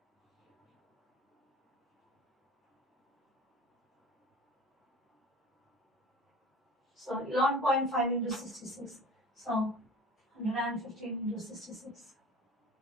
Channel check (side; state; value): both; normal; correlation 0.40